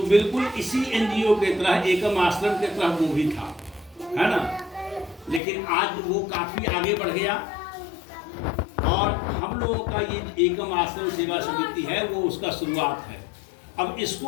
बिल्कुल इसी एनजीओ के तरह, एकम आश्रम के तरह वो भी था, है ना। लेकिन आज वो काफ़ी आगे बढ़ गया और हम लोगों का ये एकम आश्रम सेवा समिति है वो उसका शुरुआत है। अब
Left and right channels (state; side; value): drops out; right; at 5.4 s